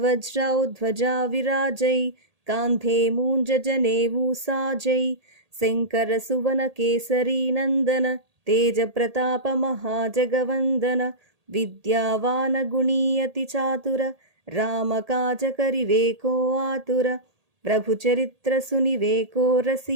ध्वजा विराजै, कांधे मूंज जनेऊ साजै। शंकर सुवन केसरी नंदन, तेज प्रताप महाजगवंदन। विद्यावान गुणी अति चातुर, राम काज करिवे को आतुर। प्रभु चरित्र सुनिवे को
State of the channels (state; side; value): late; left; 1.8 ms